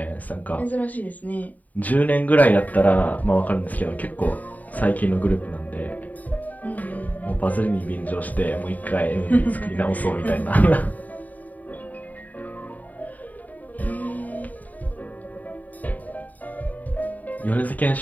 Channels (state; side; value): late; right; 0.076 ms